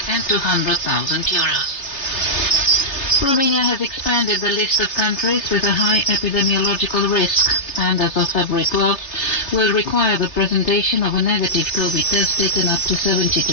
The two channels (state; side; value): late; right; 3.3 ms